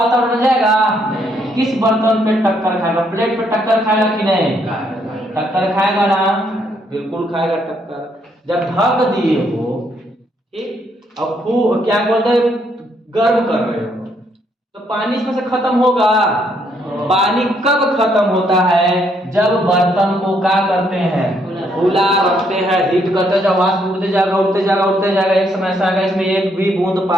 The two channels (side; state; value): both; normal; correlation 0.72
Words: में जाएगा? किस बर्तन पे टक्कर खाएगा? प्लेट पे टक्कर खाएगा कि नहीं? टक्कर खाएगा ना, बिल्कुल खाएगा टक्कर। जब ढक दिए हो, ठीक, अब क्या बोलते हैं, गर्म कर रहे हो, तो पानी इसमें से खत्म होगा। पानी कब खत्म होता है? जब बर्तन को क्या करते हैं? खुला रखते हैं, हीट करते जाओ, वाष्प उड़ते जाएगा, उड़ते जाएगा, उड़ते जाएगा, एक समय ऐसा आएगा इसमें एक भी बूंद